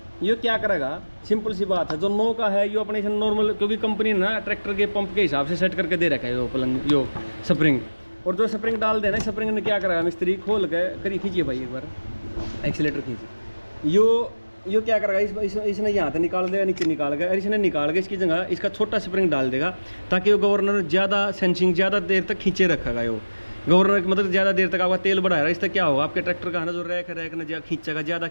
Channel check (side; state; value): both; inverted; correlation -1.00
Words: ये क्या करेगा, सिंपल सी बात है, जो 9 का है यो अपने नॉर्मल, क्योंकि कंपनी ना ट्रैक्टर के पंप के हिसाब से सेट करके दे रखा है यो पलंग, यो स्प्रिंग। और जो स्प्रिंग डाल देना, स्प्रिंग ने क्या करेगा, मिस्त्री खोल के करिए, खींचिए भाई एक बार एक्सीलेटर खींचिए, यो क्या करेगा, इसने यहाँ से निकाल देगा, नीचे निकाल गया, और इसने निकाल के इसकी जगह इसका छोटा स्प्रिंग डाल देगा, ताकि वो गवर्नर ज़्यादा सेंसिंग ज़्यादा देर तक खींचे रखेगा। यो गवर्नर मतलब ज़्यादा देर तक आपका तेल बढ़ाएगा, इससे क्या होगा, आपके ट्रैक्टर का है ना जो रैक ना खींचेगा, ज़्यादा